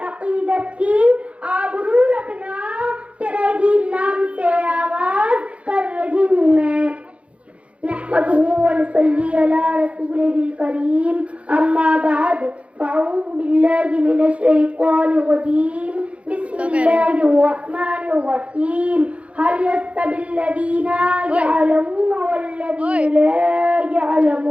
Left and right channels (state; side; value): late; left; 0.062 ms